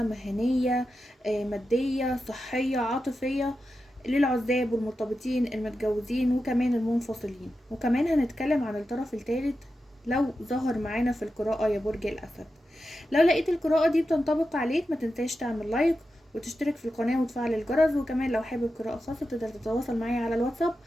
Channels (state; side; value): normal; both; correlation 0.90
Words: مهنية، مادية، صحية، عاطفية، للعزاب والمرتبطين، المتجوزين، وكمان المنفصلين. وكمان هنتكلم عن الطرف الثالث لو ظهر معانا في القراءة يا برج الأسد. لو لقيت القراءة دي بتنطبق عليك ما تنساش تعمل لايك وتشترك في القناة وتفعل الجرس. وكمان لو حابب قراءة خاصة تقدر تتواصل معايا على الواتساب،